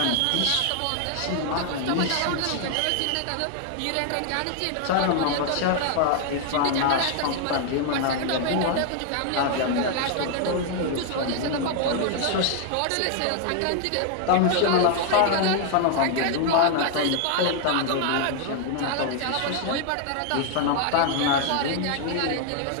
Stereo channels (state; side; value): different; both; correlation 0.00